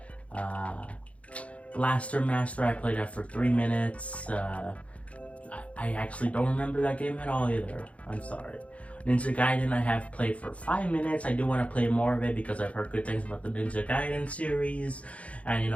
Blaster Master, I played that for 3 minutes. I actually don't remember that game at all either. I'm sorry. Ninja Gaiden I have played for 5 minutes. I do want to play more of it because I've heard good things about the Ninja Gaiden series. And you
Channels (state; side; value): late; right; 0.064 ms